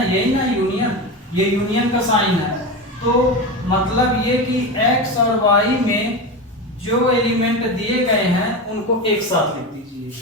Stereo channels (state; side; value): normal; both; correlation 0.21